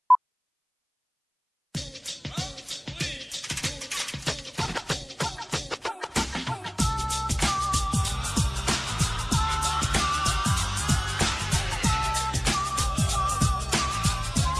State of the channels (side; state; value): both; identical; correlation 1.00